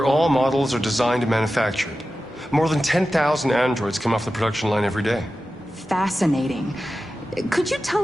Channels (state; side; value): normal; both; correlation 0.93